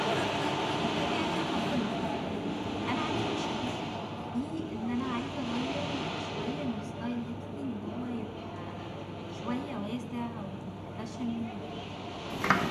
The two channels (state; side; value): identical; both; correlation 1.00